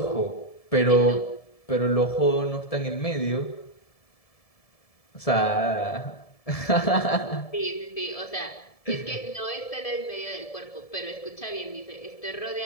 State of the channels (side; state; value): right; late; 1.7 ms